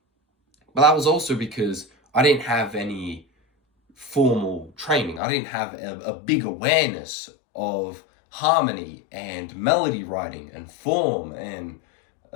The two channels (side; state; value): right; drops out; at 5.2 s